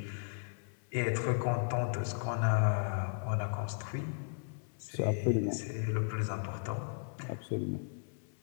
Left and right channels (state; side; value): silent; right; 54 dB below the other